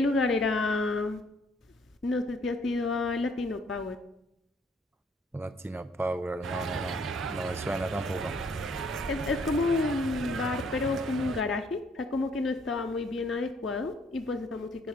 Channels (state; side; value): normal; both; correlation 0.63